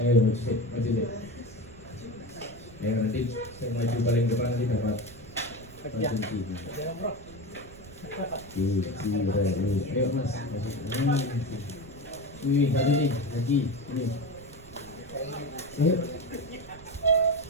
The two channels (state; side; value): noise; right; rumble, 19 dB below the sound